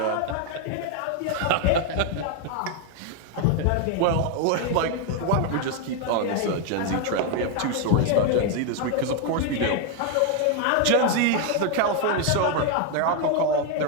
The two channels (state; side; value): different; both; correlation 0.01